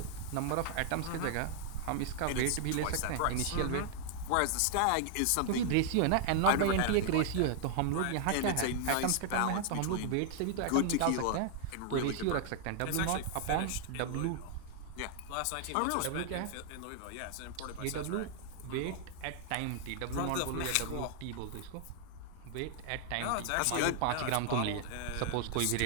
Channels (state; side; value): different; both; correlation 0.00